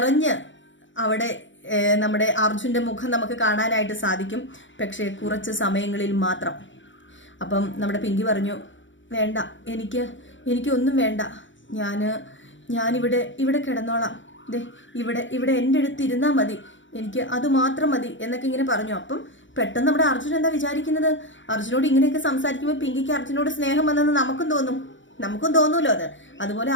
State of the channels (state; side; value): late; right; 0.55 ms